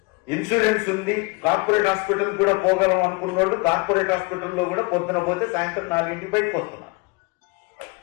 ఇన్సూరెన్స్ ఉంది, కార్పొరేట్ హాస్పిటల్ కూడా పోగలం అనుకున్న వాళ్ళు కార్పొరేట్ హాస్పిటల్లో కూడా పొద్దున పోతే సాయంత్రం 4 బయటకు వస్తున్నారు.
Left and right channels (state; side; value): quieter; right; 27.4 dB